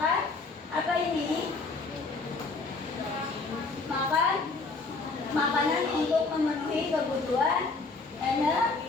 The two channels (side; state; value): right; quieter; 3.9 dB